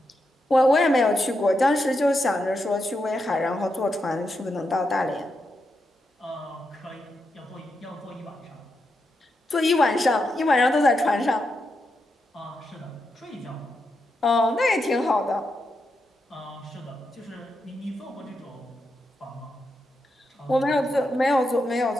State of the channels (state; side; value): normal; both; correlation 0.85